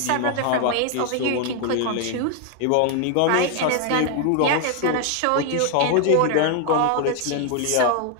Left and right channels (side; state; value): both; different; correlation 0.00